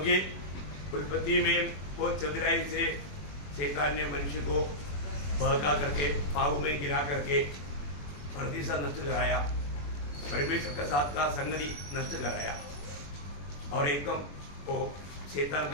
उत्पत्ति में बहुत चतुराई से शैतान ने मनुष्य को बहका करके पाप में गिरा करके धरती सा नष्ट कराया, परमेश्वर का साथ का संगति नष्ट कराया और एकदम वो शैतान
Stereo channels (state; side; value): late; right; 21 ms